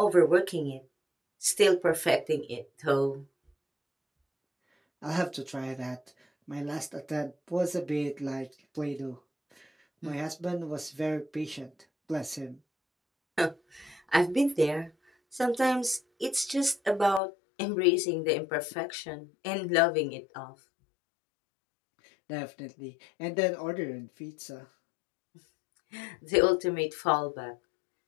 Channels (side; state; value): right; drops out; at 17.2 s